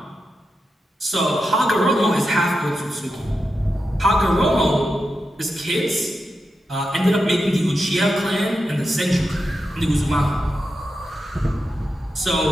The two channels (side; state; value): both; normal; correlation 0.88